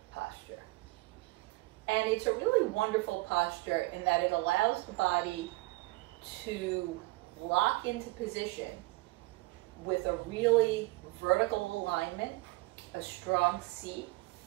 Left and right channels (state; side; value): quieter; left; 22.4 dB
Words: posture. And it's a really wonderful posture in that it allows the body to lock into position with a really vertical alignment, a strong seat,